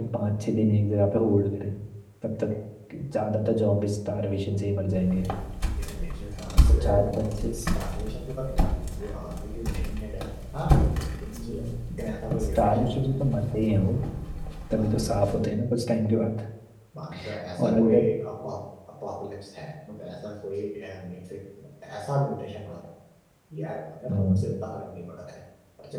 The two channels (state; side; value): identical; both; correlation 1.00